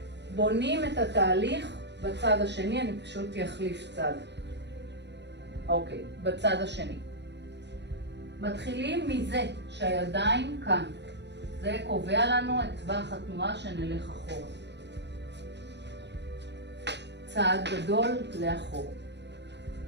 בונים את התהליך בצד השני, אני פשוט אחליף צד. אוקיי, בצד השני. מתחילים מזה שהידיים כאן. זה קובע לנו את טווח התנועה שנלך אחורה. צעד גדול לאחור.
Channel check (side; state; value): left; late; 0.50 ms